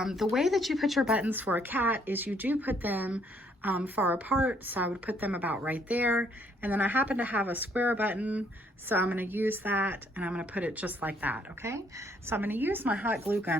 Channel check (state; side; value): normal; both; correlation 0.67